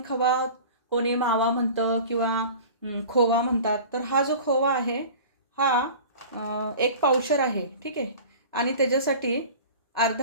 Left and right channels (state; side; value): inverted; both; correlation -0.39